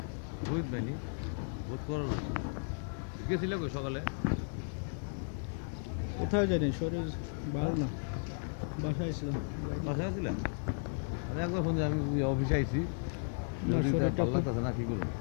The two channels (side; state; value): right; silent; 55 dB below the other